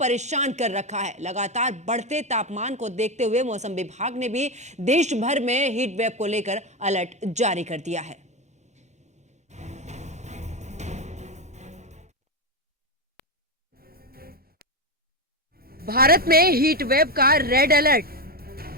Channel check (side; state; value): both; normal; correlation 0.12